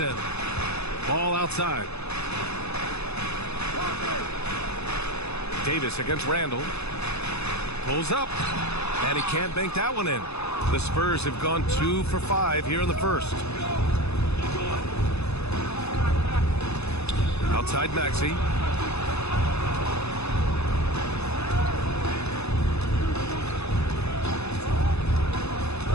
Ball outside. Davis against Randall. Pulls up. And he can't bank that one in. The Spurs have gone 2 for 5 here in the first. Outside Maxey.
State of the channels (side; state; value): right; late; 0.80 ms